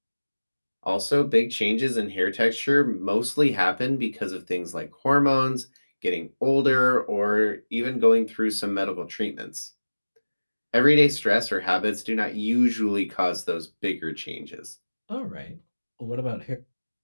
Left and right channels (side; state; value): both; inverted; correlation -1.00